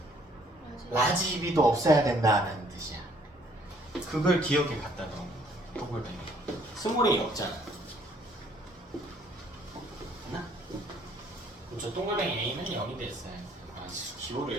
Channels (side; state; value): both; normal; correlation 0.62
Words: 라지 B도 없어야 된다는 뜻이야. 그걸 기억에 갖다 넣은 거야. 동글뱅이. 스몰 A 없잖아. 맞나? 그럼 저 동글뱅이 A는 0이 됐어요.